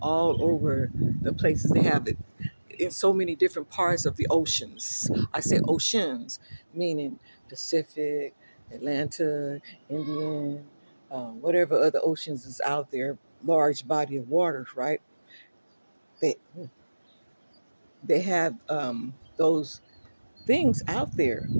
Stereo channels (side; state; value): both; inverted; correlation -1.00